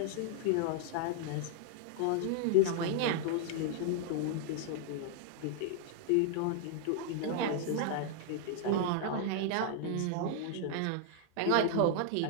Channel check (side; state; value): both; different; correlation 0.00